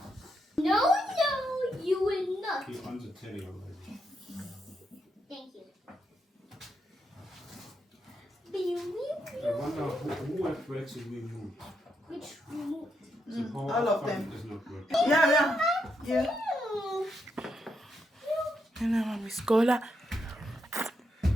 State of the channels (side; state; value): both; normal; correlation 0.81